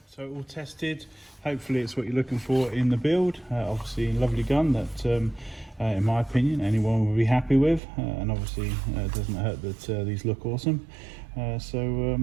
so all tested. Hopefully it's what you're looking for in the build. Obviously a lovely gun that in my opinion anyone will be happy with, and obviously it doesn't hurt that these look awesome. Yeah, so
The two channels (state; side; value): drops out; left; at 7.8 s